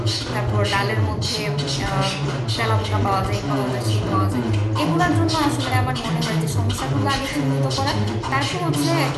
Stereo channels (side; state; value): both; identical; correlation 1.00